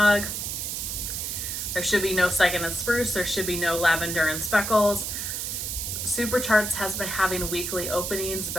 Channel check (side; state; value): right; noise; hiss, 3 dB below the sound